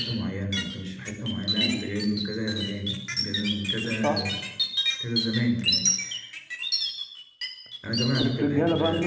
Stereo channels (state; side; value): identical; both; correlation 1.00